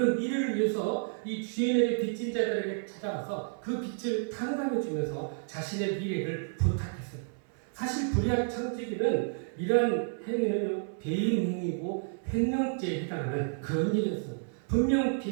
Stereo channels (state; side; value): silent; left; 57 dB below the other